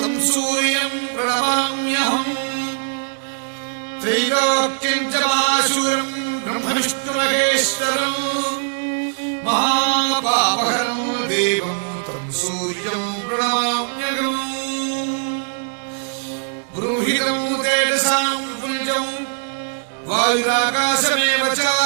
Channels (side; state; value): left; silent; 65 dB below the other